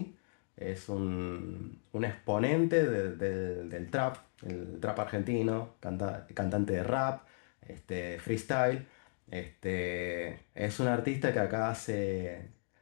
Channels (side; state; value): right; silent; digital silence